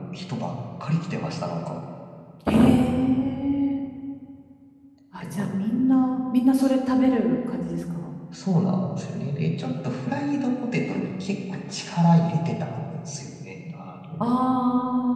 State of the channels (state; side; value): identical; both; correlation 1.00